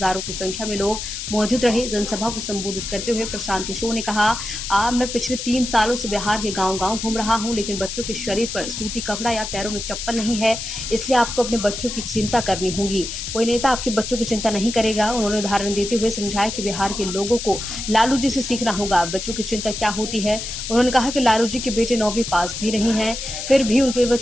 की संख्या में लोग मौजूद रहे। जनसभा को संबोधित करते हुए प्रशांत किशोर ने कहा, मैं पिछले 3 सालों से बिहार के गांव-गांव घूम रहा हूं, लेकिन बच्चों के शरीर पर सूती कपड़ा या पैरों में चप्पल नहीं है, इसलिए आपको अपने बच्चों की चिंता करनी होगी। कोई नेता आपके बच्चों की चिंता नहीं करेगा। उन्होंने उदाहरण देते हुए समझाया कि बिहार के लोगों को लालू जी से सीखना होगा बच्चों की चिंता क्या होती है। उन्होंने कहा कि लालू जी के बेटे 9वीं पास भी नहीं है, फिर भी वो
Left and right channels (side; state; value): left; noise; hiss, 6 dB below the sound